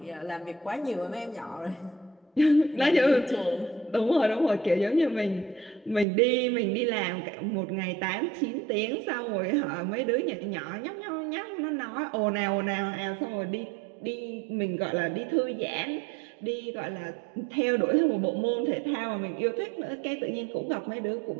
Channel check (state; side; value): drops out; left; at 6.1 s